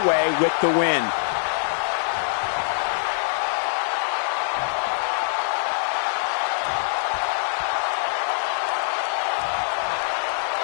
with the win.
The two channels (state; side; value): silent; right; digital silence